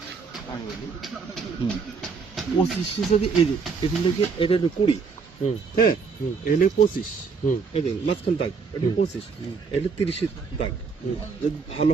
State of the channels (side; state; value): left; quieter; 5.2 dB